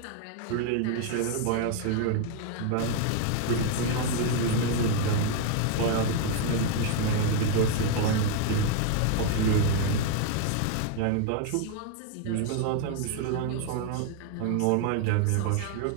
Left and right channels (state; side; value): different; both; correlation 0.01